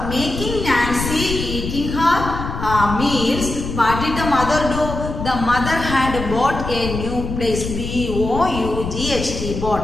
making Nancy eating her meals, what did the mother do? The mother had bought a new plate. B-O-U-G-H-T,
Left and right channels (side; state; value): left; noise; rumble, 6 dB below the sound